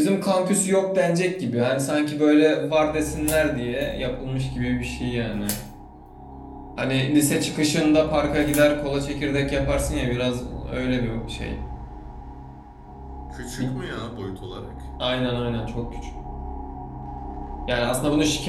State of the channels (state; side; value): identical; both; correlation 1.00